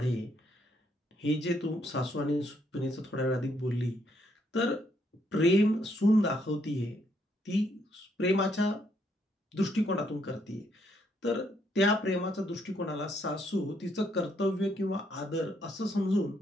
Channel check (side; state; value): both; normal; correlation 0.73